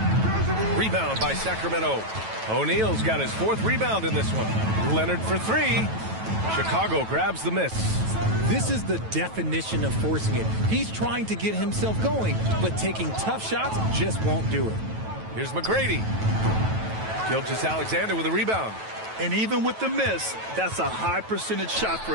Rebound by Sacramento. O'Neal's got his 4th rebound in this one. Leonard for 3. Chicago grabs the miss. This is the definition of forcing it. He's trying to get himself going, but taking tough shots just won't do it. Here's McGrady. Gilgeous-Alexander with a rebound. And even with the miss, that's a high percentage shot for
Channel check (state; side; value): late; left; 9.2 ms